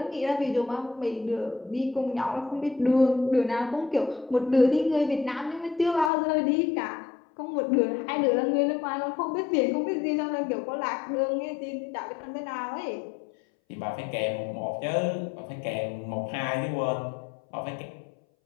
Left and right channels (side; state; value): right; drops out; at 6.1 s